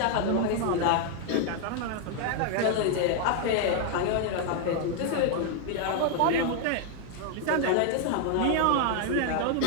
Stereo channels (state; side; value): different; both; correlation 0.00